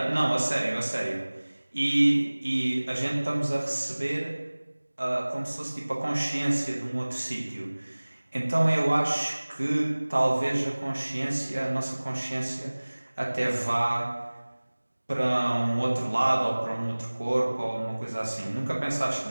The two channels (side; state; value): both; inverted; correlation -1.00